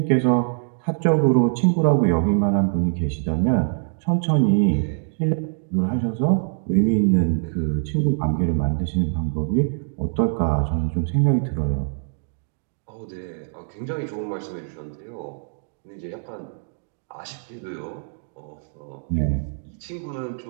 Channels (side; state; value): left; silent; 62 dB below the other